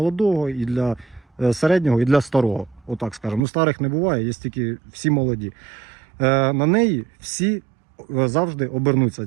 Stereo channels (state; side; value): drops out; left; at 3.4 s